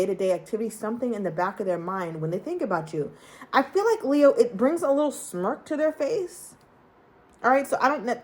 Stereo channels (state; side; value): identical; both; correlation 1.00